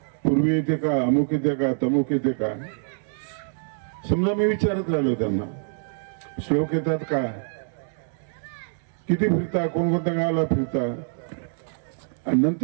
पूर्वी येते का, अमुक येते का, तमुक येते का. समजा मी विचारत राहिलो त्यांना, श्लोक येतात का, किती फिरता, कोणकोणत्या गावाला फिरता. आणि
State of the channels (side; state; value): left; silent; 62 dB below the other